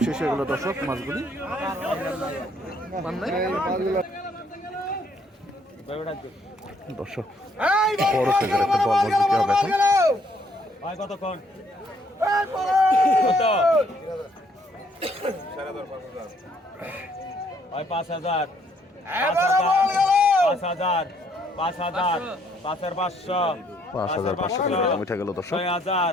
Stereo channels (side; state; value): both; normal; correlation 0.68